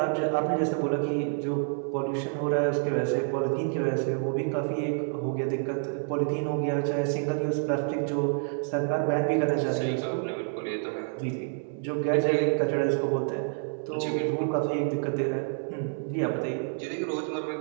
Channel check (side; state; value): left; silent; 59 dB below the other